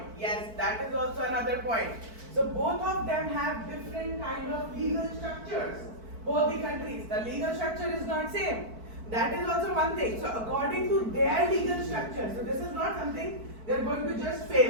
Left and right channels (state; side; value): late; left; 4.5 ms